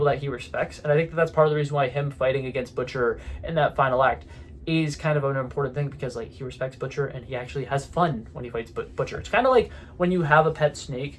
that he respects, and I think that that's part of the reason why him fighting against Butcher in that final act is kind of an important thing, because he respects Butcher and he actually has fun when he fights Butcher. It's kind of like when you have a pet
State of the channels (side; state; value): both; identical; correlation 1.00